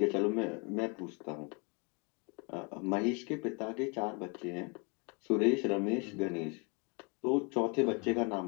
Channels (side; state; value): right; quieter; 32.7 dB